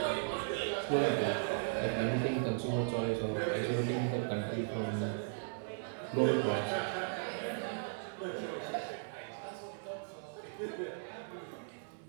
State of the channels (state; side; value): silent; left; digital silence